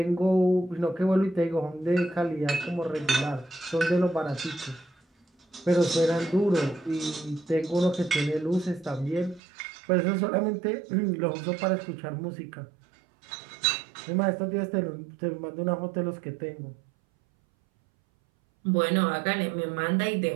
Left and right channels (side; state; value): left; drops out; at 9.4 s